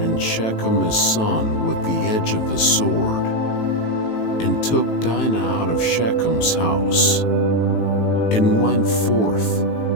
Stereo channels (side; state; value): right; late; 18 ms